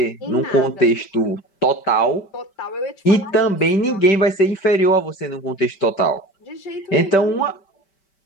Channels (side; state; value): right; late; 5.1 ms